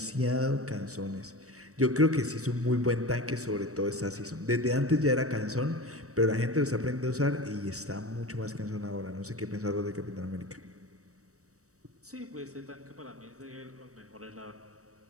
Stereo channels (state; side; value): late; left; 0.65 ms